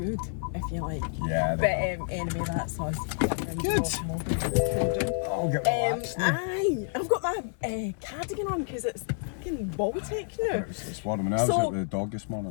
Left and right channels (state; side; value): silent; right; 59 dB below the other